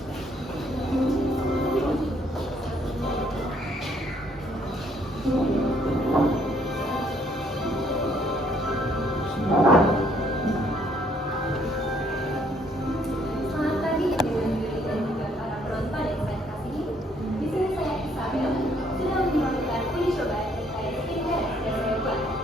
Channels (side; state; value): both; normal; correlation 0.66